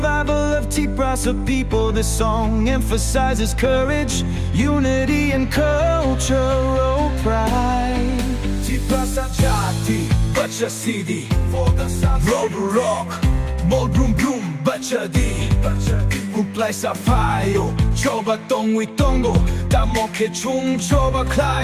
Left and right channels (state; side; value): identical; both; correlation 1.00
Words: of Tiprasa people. This song emphasizes courage, unity, and cultural pride. Tiprasa jati, bachasidi, kokborok, brum brum, bachasidi. Uplay sa payo, coba tongwi tongo, tamoke chung coba